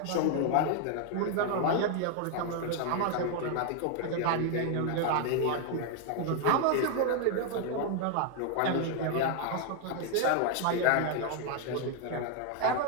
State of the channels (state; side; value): different; both; correlation 0.00